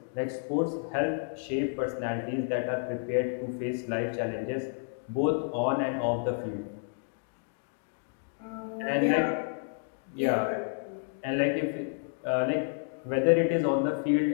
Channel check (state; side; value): silent; right; digital silence